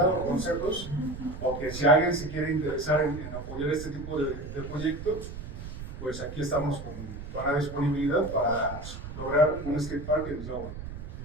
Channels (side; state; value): right; noise; rumble, 10 dB below the sound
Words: o consejos, o que si alguien se quiere interesar en apoyar este tipo de proyectos, pues aquí estamos con la disponibilidad para lograr un skatepark en Tláhuac.